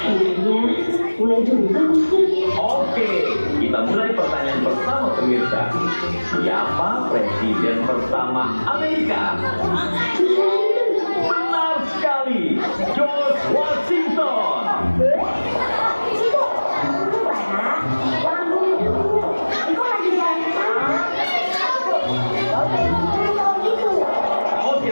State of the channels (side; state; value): both; inverted; correlation -1.00